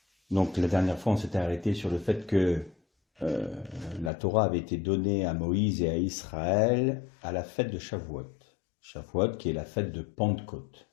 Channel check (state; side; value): drops out; right; at 4.1 s